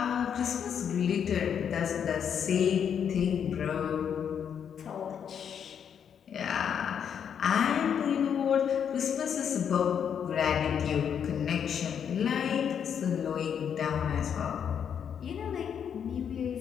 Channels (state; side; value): quieter; right; 8.0 dB